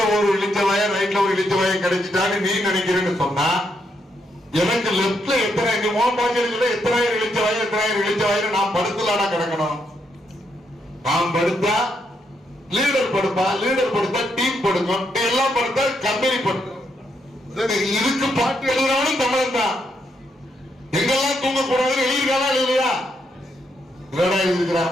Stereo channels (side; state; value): both; normal; correlation 0.78